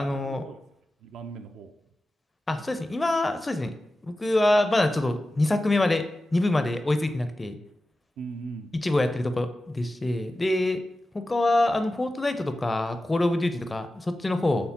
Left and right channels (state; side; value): normal; both; correlation 0.94